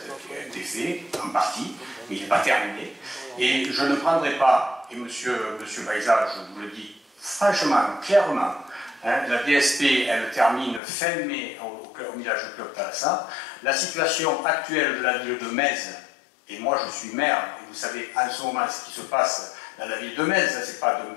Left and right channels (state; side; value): drops out; right; at 10.8 s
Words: été fait en partie, mais il n'est pas terminé. Et je ne prendrai pas, et monsieur Baïza, je vous le dis franchement, clairement, hein, la DSP, elle termine fin mai au village club Terrassa. La situation actuelle de la ville de Metz, et moi je suis maire, et vous savez en ce moment ce qui se passe dans la ville de Metz, ce n'est pas